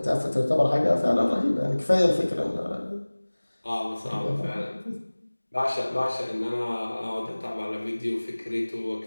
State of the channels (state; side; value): inverted; both; correlation -1.00